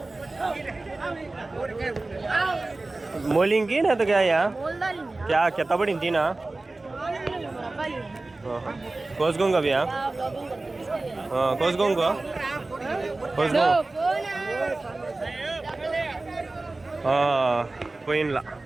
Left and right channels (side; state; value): left; quieter; 3.1 dB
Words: मोलिंग की ना तो क्या यार क्या कितना बड़ी थी ना कोसगोंगा भैया हाँ कोसगोंगा పోయినలా